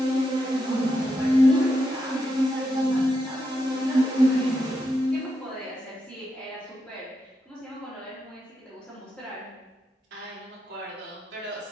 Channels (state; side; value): normal; both; correlation 0.84